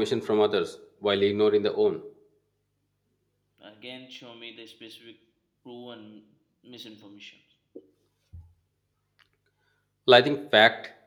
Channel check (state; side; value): identical; both; correlation 1.00